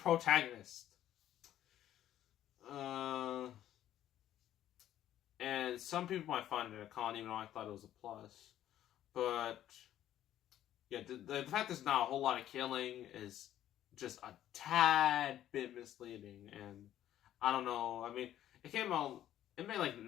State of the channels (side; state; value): right; quieter; 12.0 dB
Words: And some people might find it a con, even though I thought it was a plus. But yeah, the fact there's not a whole lot of killing is just a tad bit misleading. And I don't know. I mean, it made like